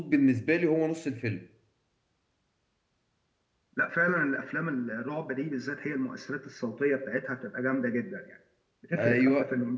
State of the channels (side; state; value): both; identical; correlation 1.00